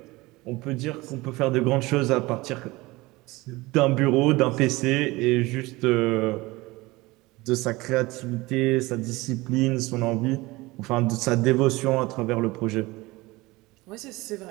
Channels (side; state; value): left; quieter; 21.2 dB